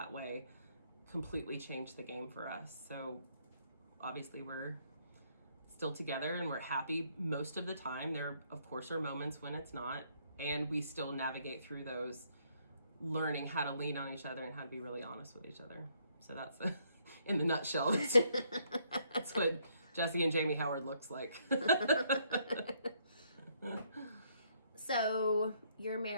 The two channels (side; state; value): both; inverted; correlation -0.69